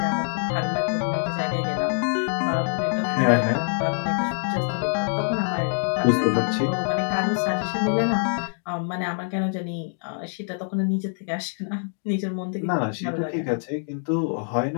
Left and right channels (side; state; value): right; silent; digital silence